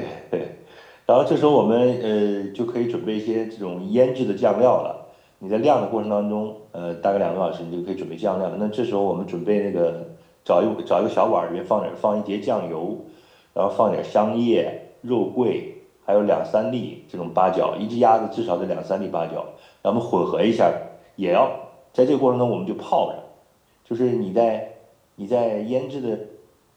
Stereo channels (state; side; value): identical; both; correlation 1.00